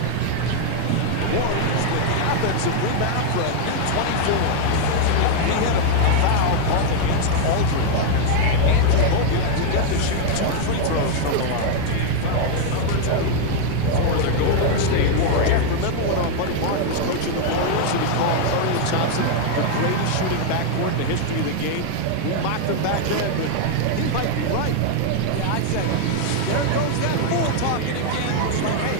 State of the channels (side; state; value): both; different; correlation 0.00